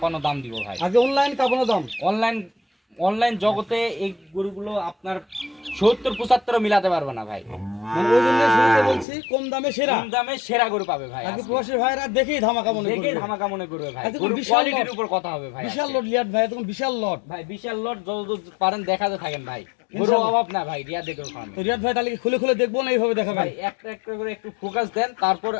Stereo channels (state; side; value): drops out; right; at 9.1 s